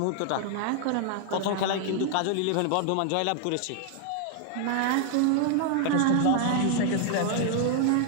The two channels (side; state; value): both; different; correlation 0.00